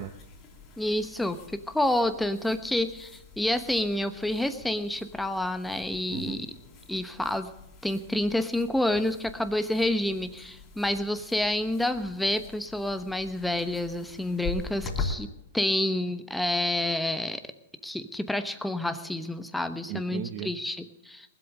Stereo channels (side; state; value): both; normal; correlation 0.84